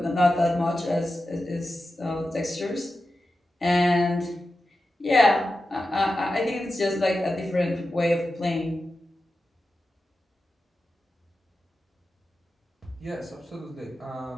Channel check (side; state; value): both; normal; correlation 0.92